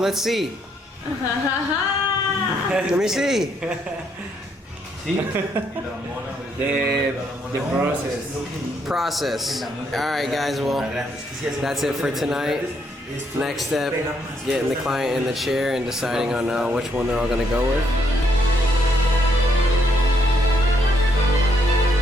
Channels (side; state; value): both; normal; correlation 0.73